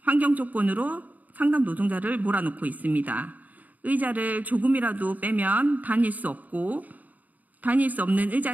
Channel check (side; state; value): left; late; 0.078 ms